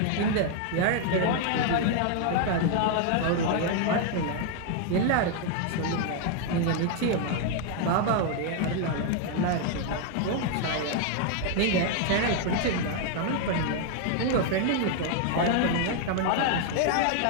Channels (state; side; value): different; both; correlation 0.00